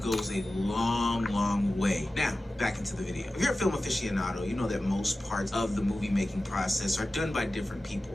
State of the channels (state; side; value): normal; both; correlation 0.95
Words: a long way. Now, back into the video. If you're a film aficionado, you know that most parts of the movie making process are done by different people.